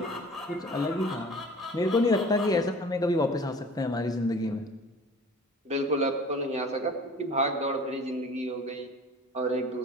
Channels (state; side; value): normal; both; correlation 0.44